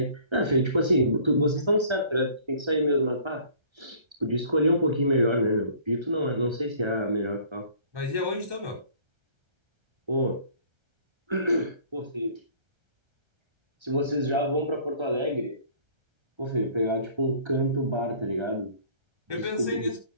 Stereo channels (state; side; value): late; left; 1.3 ms